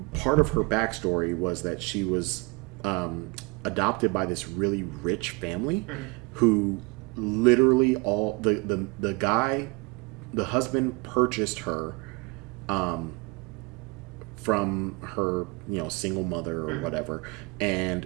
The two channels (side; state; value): left; quieter; 27.6 dB